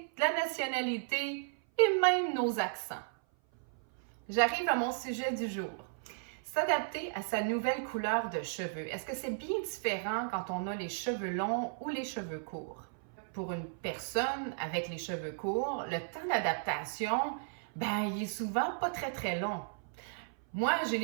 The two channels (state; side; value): silent; left; 55 dB below the other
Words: de la nationalité et même nos accents. J'arrive à mon sujet du jour. S'adapter à sa nouvelle couleur de cheveux. Est-ce que c'est bien différent quand on a les cheveux longs ou les cheveux courts? Pour une personne avec les cheveux courts, le temps d'adaptation, il est souvent pas très long. Moi, j'ai